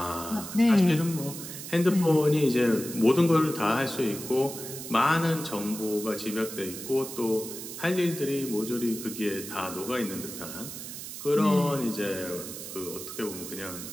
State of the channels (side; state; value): right; noise; hiss, 10 dB below the sound